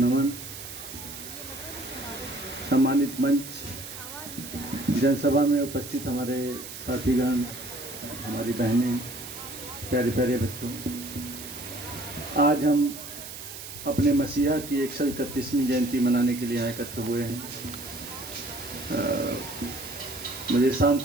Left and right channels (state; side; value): noise; right; hiss, 11 dB below the sound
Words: सम्मानित मंच, जनसभा में उपस्थित हमारे साथीगण, हमारी बहनें, प्यारे प्यारे बच्चों, आज हम अपने मसीहा की 131वीं जयंती मनाने के लिए यहाँ एकत्र हुए हैं। मुझे शाम